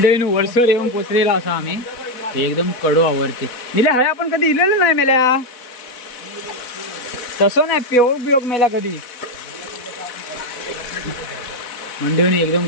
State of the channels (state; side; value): late; right; 4.1 ms